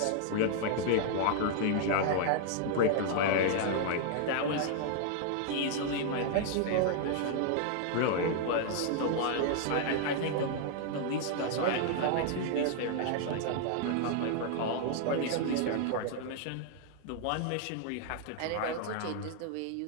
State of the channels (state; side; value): different; both; correlation 0.00